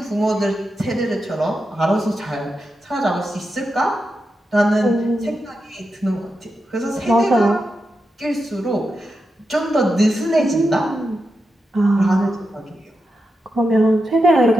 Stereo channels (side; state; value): both; normal; correlation 0.88